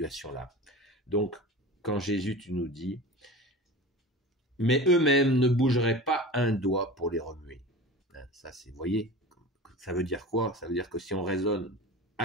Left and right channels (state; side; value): normal; both; correlation 0.34